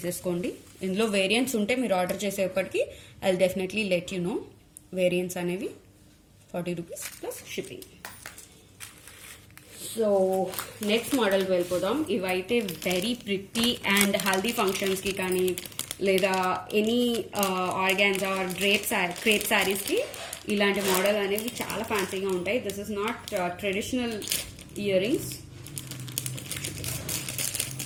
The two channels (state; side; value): identical; both; correlation 1.00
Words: ఇందులో వేరియంట్స్ ఉంటే మీరు ఆర్డర్ చేసేప్పటికి I will definitely let you know variants అనేవి. $40 ప్లస్ షిప్పింగ్. సో నెక్స్ట్ మోడల్కి వెళ్ళిపోదాం. ఇవైతే వెరీ ప్రిటీ అండ్ హల్దీ ఫంక్షన్స్కి కానీ లేదా ఎనీ ఆర్గాన్జా ఆర్ క్రేప్ శారీస్కి ఇలాంటి మోడల్ అనేవి చాలా ఫ్యాన్సీగా ఉంటాయి. This is not traditional ear rings.